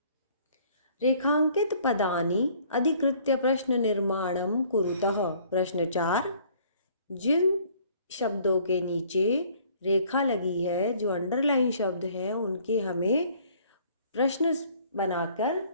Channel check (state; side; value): inverted; both; correlation -0.58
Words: रेखांकित पदानि अधिकृत्य प्रश्न निर्माणम कुरुतः। प्रश्न 4, जिन शब्दों के नीचे रेखा लगी है, जो अंडरलाइन शब्द है, उनके हमें प्रश्न बनाकर